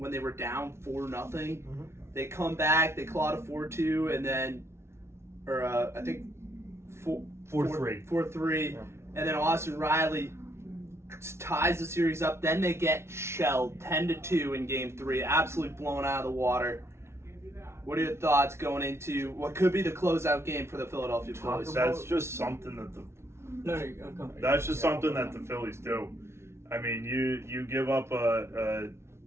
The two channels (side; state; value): left; late; 0.13 ms